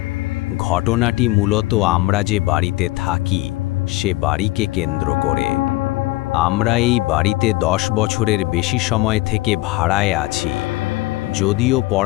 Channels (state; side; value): quieter; right; 19.6 dB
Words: ঘটনাটি মূলত আমরা যে বাড়িতে থাকি সে বাড়িকে কেন্দ্র করে। আমরা এই বাড়িতে 10 বছরের বেশি সময় থেকে ভাড়ায় আছি। যদিও